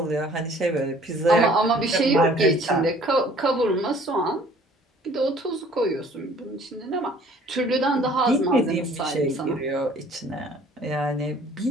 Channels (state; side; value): normal; both; correlation 0.54